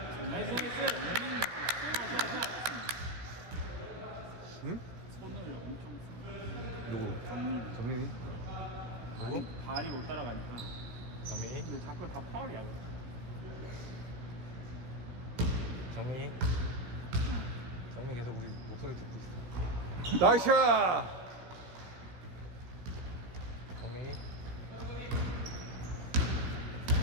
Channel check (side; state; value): left; late; 16 ms